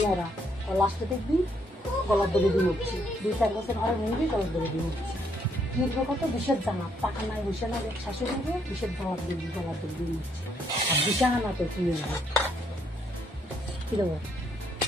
ওরা, লাস্টে দেখবি গলার দড়ি দিয়ে উঠছে, 2-4 বছর ঘরে মরবি গলার দড়ি দিয়ে উঠছে। কিনবো কত বিষের জামা, টাকা নাই বসে না শাশুড়ি হবে, বিষের জামা দিবি গলার দড়ি দিয়ে উঠছে। আর বিছানা তো কিনে নেবে। কি দেবো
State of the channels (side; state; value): both; normal; correlation 0.72